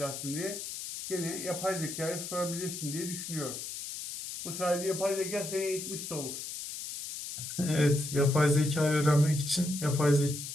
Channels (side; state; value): left; noise; hiss, 7 dB below the sound